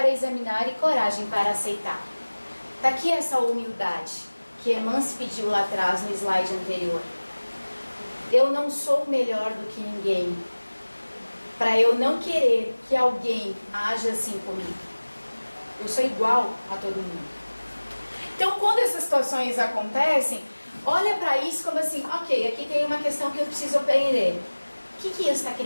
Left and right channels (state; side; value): inverted; both; correlation -1.00